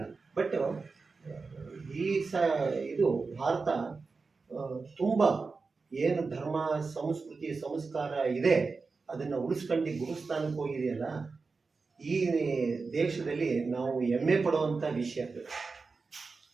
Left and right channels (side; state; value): left; quieter; 4.4 dB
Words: ಬಟ್ ಇದು ಭಾರತ ತುಂಬ ಏನು ಧರ್ಮ, ಸಂಸ್ಕೃತಿ, ಸಂಸ್ಕಾರ ಇದೆ ಅದನ್ನು ಉಳಿಸ್ಕೊಂಡು ಗುರುಸ್ಥಾನಕ್ಕೆ ಹೋಗಿದೆಯಲ್ಲ, ಈ ದೇಶದಲ್ಲಿ ನಾವು ಹೆಮ್ಮೆ ಪಡುವಂಥ ವಿಷಯ.